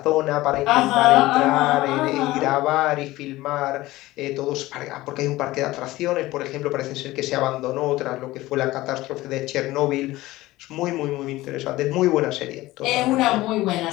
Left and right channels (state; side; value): quieter; right; 17.9 dB